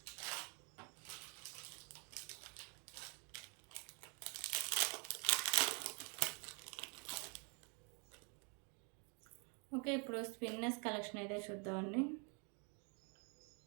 Okay. ఇప్పుడు స్పిన్నర్స్ కలెక్షన్ అయితే చూద్దామండి.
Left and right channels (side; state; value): left; quieter; 36.6 dB